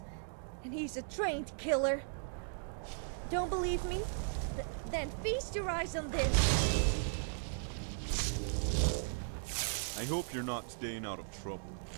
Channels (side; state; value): left; silent; digital silence